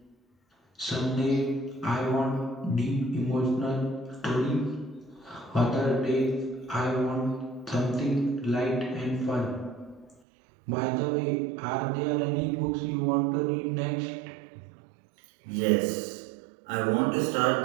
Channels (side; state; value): left; drops out; at 10.2 s